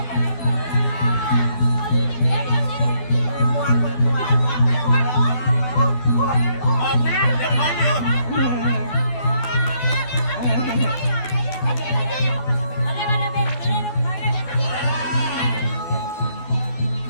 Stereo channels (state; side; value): late; right; 12 ms